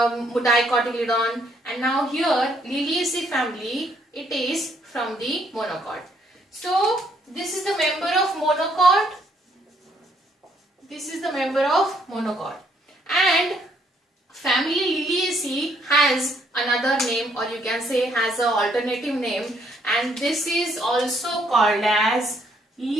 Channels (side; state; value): both; normal; correlation 0.69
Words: and now here Liliaceae family, it is from the monocot. So this is the member of monocot. This is the member of monocot, and family Liliaceae has another name, or you can say has an alternative name, and this is also called as